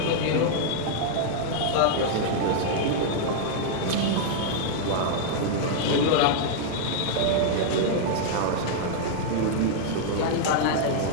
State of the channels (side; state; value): both; different; correlation -0.01